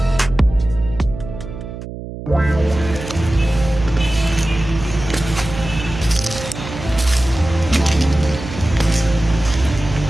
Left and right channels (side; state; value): right; noise; hum, 10 dB below the sound